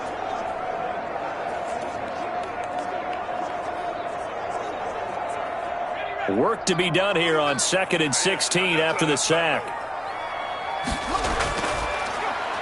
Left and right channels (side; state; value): both; identical; correlation 1.00